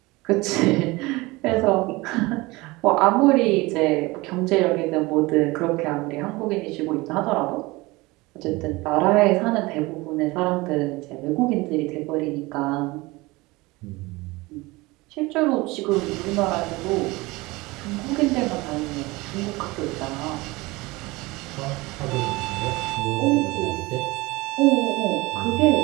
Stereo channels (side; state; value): left; quieter; 22.2 dB